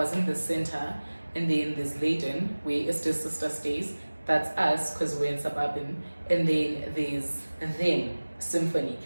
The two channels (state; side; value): inverted; both; correlation -1.00